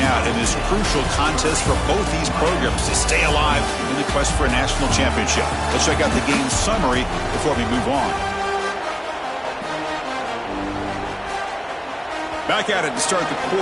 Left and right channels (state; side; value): identical; both; correlation 1.00